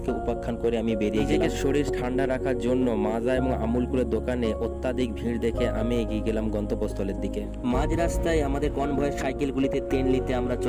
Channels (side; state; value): both; identical; correlation 1.00